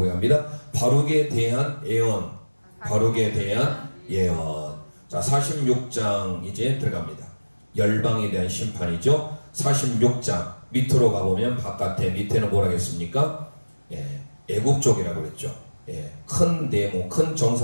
바룩에 대한 예언, 바룩에 대한 예언. 자, 46장 이제 들어갑니다. 열방에 대한 심판이죠. 46장 밑으로 가보면 바깥에 밑에는 뭐라 했습니까? 애굽 쪽이라고 그랬죠. 큰 네모, 큰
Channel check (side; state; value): both; inverted; correlation -1.00